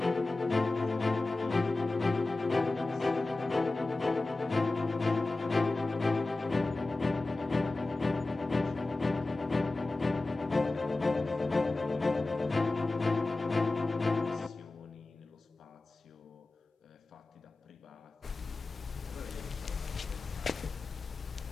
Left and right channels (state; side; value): quieter; right; 3.2 dB